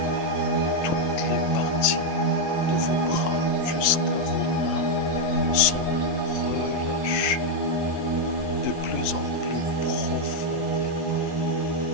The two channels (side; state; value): right; late; 12 ms